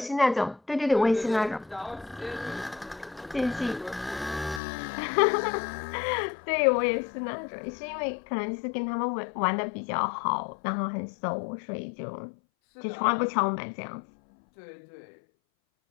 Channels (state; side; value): drops out; right; at 4.6 s